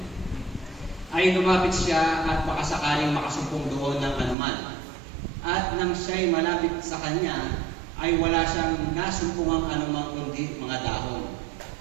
ay lumapit siya at baka sakaling makasumpong doon ng anuman. At nang siya'y malapit sa kanya, ay wala siyang nasumpungang anumang kundi mga dahon,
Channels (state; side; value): drops out; left; at 4.4 s